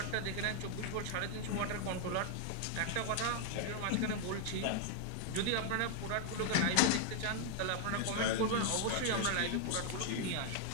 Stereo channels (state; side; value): different; both; correlation 0.00